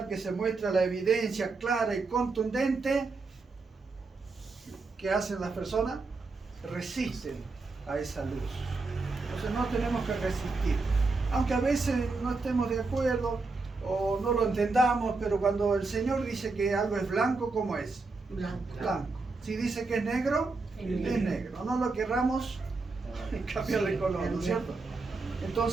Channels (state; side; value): quieter; left; 3.8 dB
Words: que se muestra la evidencia clara y contundente, ¿qué hacen las personas? Resisten a esa luz. Entonces no tenemos que resistir. Aunque a veces no estemos de acuerdo o no lo entendamos, pero cuando el Señor dice que algo es blanco, ¿cómo es? Blanco. Blanco. Si dice que es negro, es negro. No lo querramos cambiar de color, ¿no es cierto?